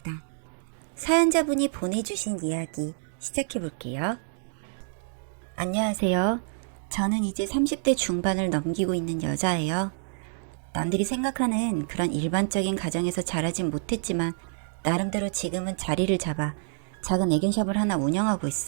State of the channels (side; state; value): left; silent; digital silence